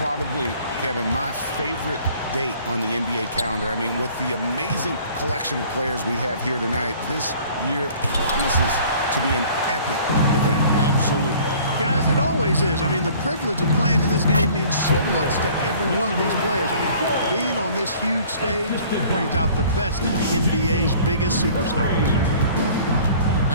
Kevin, my favorite date on the NBA calendar. I mean, with the amazing collection of players we have here tonight, this year promises to be an epic event. Absolutely. Guys, it always is. I mean, the privilege of playing in this game means so much to every one of these players. I mean, being on this huge stage brings out the best in the NBA's biggest superstars.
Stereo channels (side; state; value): both; inverted; correlation -0.51